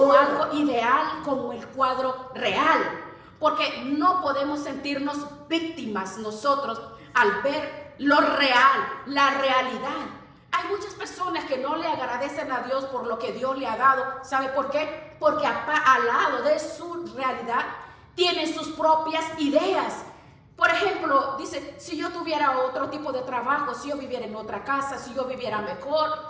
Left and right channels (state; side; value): identical; both; correlation 1.00